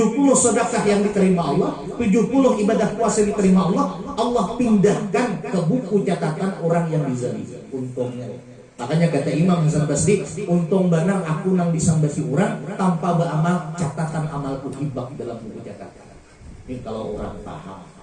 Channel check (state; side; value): identical; both; correlation 1.00